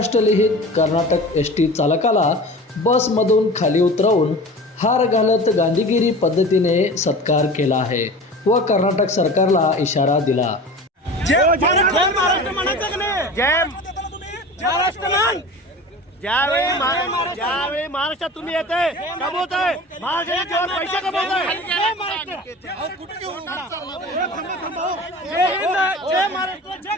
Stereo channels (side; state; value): both; normal; correlation 0.36